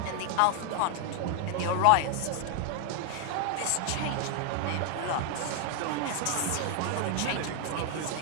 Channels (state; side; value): different; both; correlation 0.00